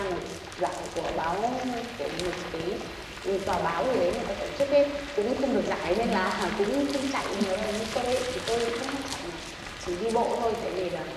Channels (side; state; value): both; identical; correlation 1.00